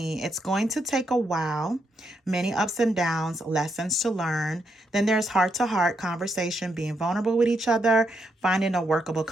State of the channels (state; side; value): normal; both; correlation 0.79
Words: It's going to take a while. Many ups and downs, lessons to learn. Then there's heart to heart conversation, being vulnerable with each other, finding a workable